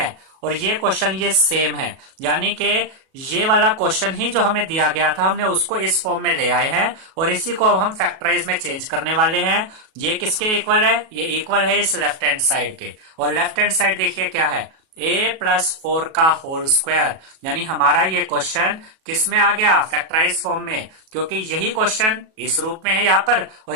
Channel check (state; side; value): late; left; 37 ms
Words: और ये क्वेश्चन ये सेम है। यानी कि ये वाला क्वेश्चन ही जो हमें दिया गया था हमने उसको इस फॉर्म में ले आए हैं, और इसी को अब हम फैक्टराइज में चेंज करने वाले हैं। ये किसके इक्वल है, ये इक्वल है इस लेफ्ट हैंड साइड के, और लेफ्ट हैंड साइड देखिए क्या है, a प्लस 4 का होल स्क्वायर। यानी हमारा ये क्वेश्चन किस में आ गया, फैक्टराइज फॉर्म में, क्योंकि यही क्वेश्चन इस रूप में है यहाँ पर, और